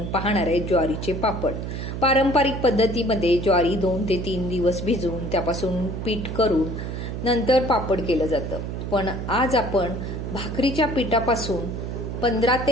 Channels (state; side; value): noise; right; hum, 5 dB below the sound